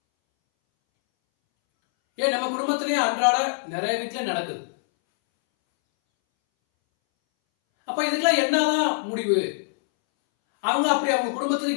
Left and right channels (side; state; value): right; silent; 62 dB below the other